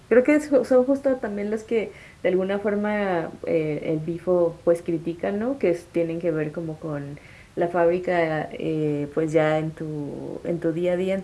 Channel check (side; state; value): both; identical; correlation 1.00